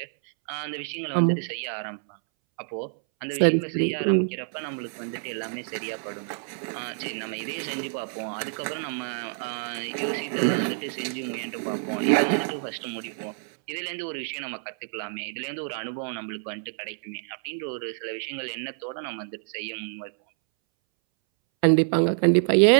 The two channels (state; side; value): silent; left; 60 dB below the other